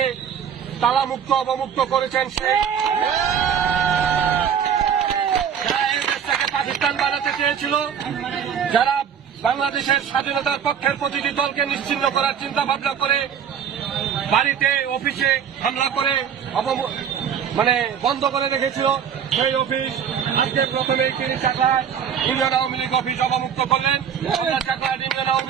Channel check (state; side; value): quieter; left; 8.0 dB